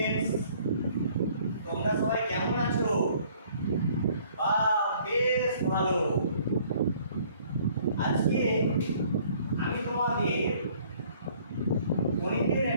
তোমরা সবাই কেমন আছো? বা বেশ ভালো। আজকে আমি তোমাদের গণিতের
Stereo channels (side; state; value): both; inverted; correlation -0.58